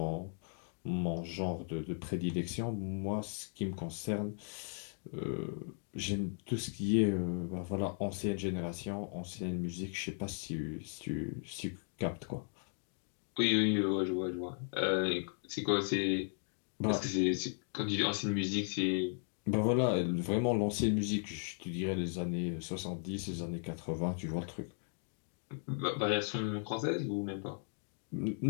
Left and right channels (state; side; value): silent; right; 53 dB below the other